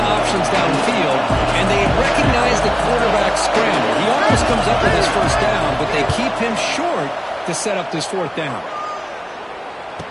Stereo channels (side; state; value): both; identical; correlation 1.00